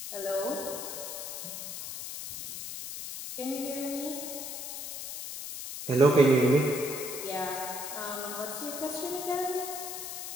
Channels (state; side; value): noise; left; hiss, 7 dB below the sound